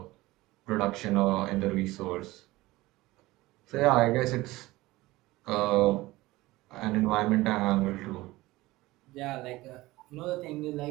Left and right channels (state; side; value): quieter; left; 19.2 dB